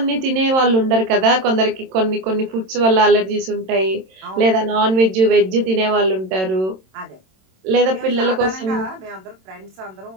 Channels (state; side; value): late; left; 27 ms